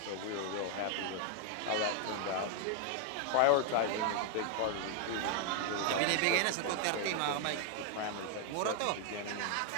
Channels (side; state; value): both; different; correlation 0.00